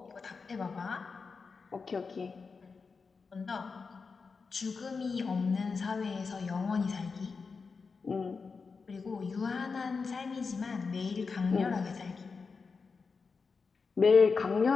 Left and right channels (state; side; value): quieter; right; 4.9 dB